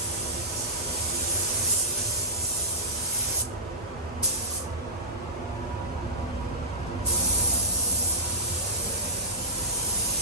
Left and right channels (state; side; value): normal; both; correlation -0.18